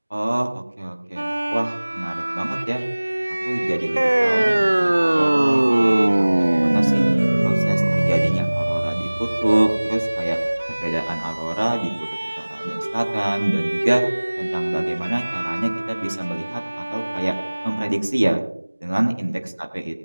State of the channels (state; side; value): inverted; both; correlation -1.00